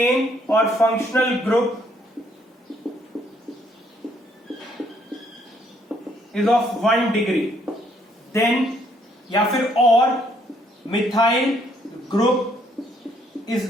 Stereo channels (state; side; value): normal; both; correlation 0.67